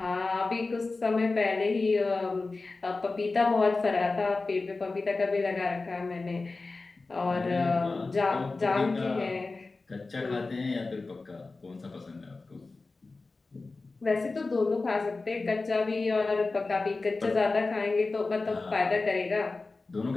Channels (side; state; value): right; quieter; 3.6 dB